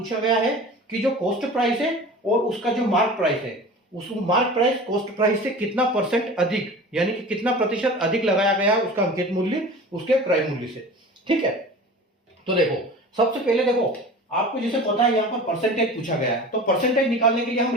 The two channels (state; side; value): normal; both; correlation 0.37